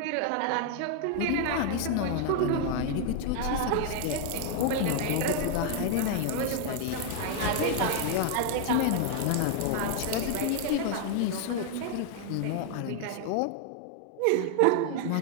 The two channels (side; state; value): both; different; correlation 0.00